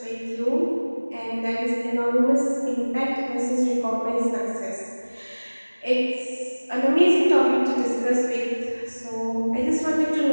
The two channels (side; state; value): both; inverted; correlation -1.00